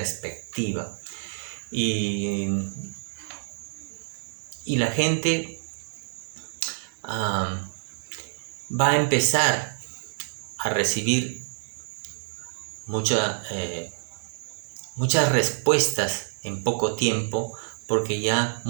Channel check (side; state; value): left; silent; 60 dB below the other